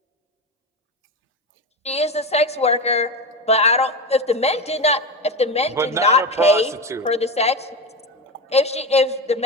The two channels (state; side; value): normal; both; correlation 0.18